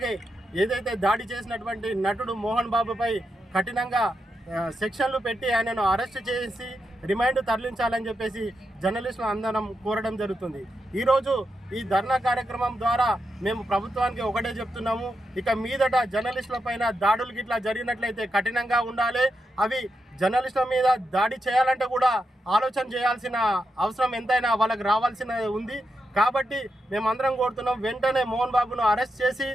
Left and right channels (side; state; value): both; normal; correlation 0.85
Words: ఏదైతే దాడి చేసినటువంటి నటుడు మోహన్ బాబుపై కఠినంగా సెక్షన్లు పెట్టి ఆయనను అరెస్ట్ చేసి రిమాండ్ తరలించాలని చెప్పేసి జర్నలిస్టులు అందరం కోరడం జరుగుతుంది. ఈరోజు ఈ ధర్నా కార్యక్రమం ద్వారా మేము ప్రభుత్వానికి ఒకటే చెప్తున్నాము, ఇక మీదట జర్నలిస్టుల పైన దాడులు గిట్లా జరిగినట్లయితే కఠినంగా ఉండాలి. అవి జర్నలిస్టుల మీద దాడి చేయాలంటే కూడా ఆలోచన చేయాల్సిన అవసరం ఎంతైనా వాళ్ళకి రావాల్సిన ఉంది. కాబట్టి మేమందరం కోరుతున్నాం, వెంటనే మోహన్ బాబును అరెస్ట్ చేసి